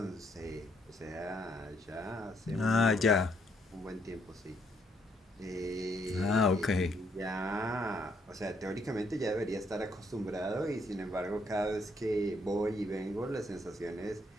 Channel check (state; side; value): normal; both; correlation 0.71